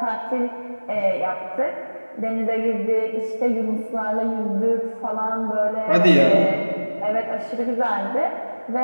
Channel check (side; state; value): both; inverted; correlation -1.00